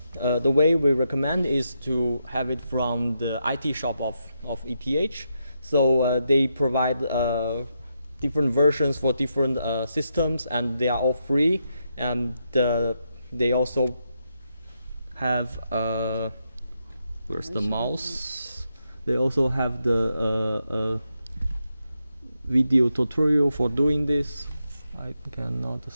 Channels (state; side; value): inverted; both; correlation -0.83